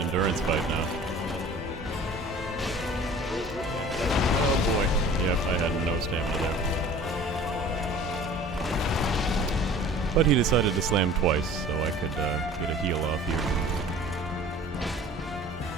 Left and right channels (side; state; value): both; normal; correlation 0.45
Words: fight now. Oh boy. Yep, I had no stamina there. But he decided to slam twice, so I could get a heal off here.